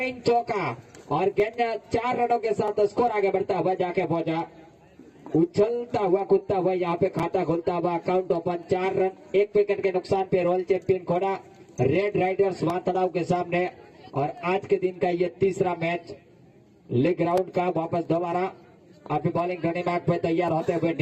चौका और गेंद 4 रनों के साथ स्कोर आगे बढ़ता हुआ जाके पहुंचा, उछलता हुआ कूदता हुआ यहाँ पे खाता खुलता हुआ अकाउंट ओपन 4 रन 1 विकेट के नुकसान पे रॉयल चैंपियन खोड़ा रेड राइडर्स वातड़ाव के सामने। और आज के दिन का ये तीसरा मैच लीग राउंड का। वापस दोबारा अपनी बॉलिंग घड़ी बाग पे तैयार होते हुए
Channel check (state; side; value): identical; both; correlation 1.00